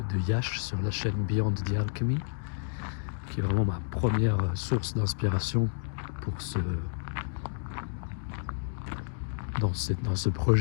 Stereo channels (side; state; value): right; silent; digital silence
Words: de Yash sur la chaîne Beyond the Alchemy, qui est vraiment ma première source d'inspiration pour dans ce